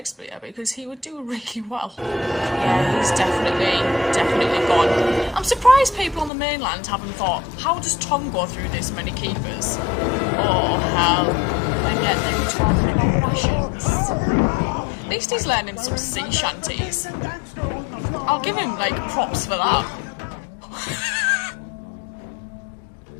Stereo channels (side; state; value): right; drops out; at 6.3 s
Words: because he would do really well. Yeah, he's definitely gone. I'm surprised people on the mainland haven't thought, how does Tom go through this many keepers? Oh, hell. And yet they were talking about rations. At least he's learning some sea shanties. I'll give him, like, props for that.